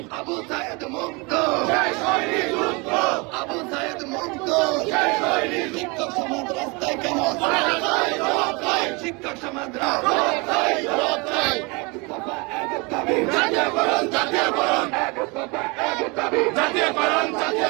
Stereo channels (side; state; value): left; quieter; 28.3 dB